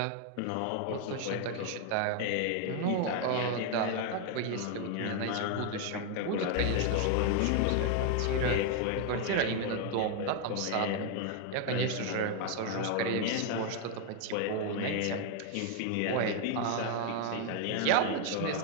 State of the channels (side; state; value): both; different; correlation 0.01